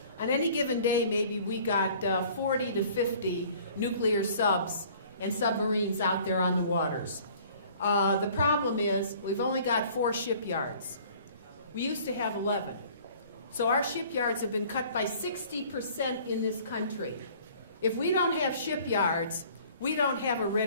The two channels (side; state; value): both; inverted; correlation -0.52